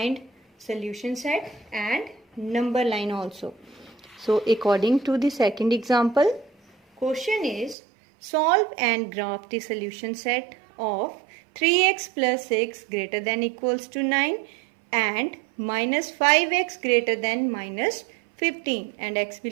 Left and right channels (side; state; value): left; drops out; at 7.8 s